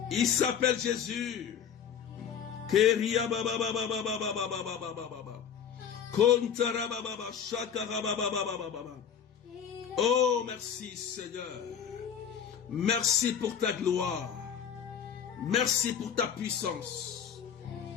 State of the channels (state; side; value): quieter; right; 8.0 dB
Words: Il s'appelle Jésus. Oh, merci Seigneur. Merci pour ta gloire. Merci pour ta puissance.